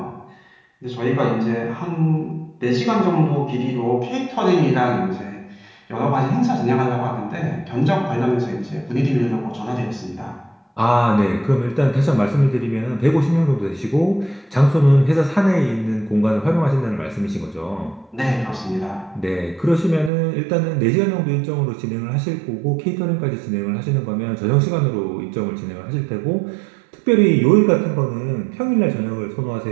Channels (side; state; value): left; drops out; at 20.1 s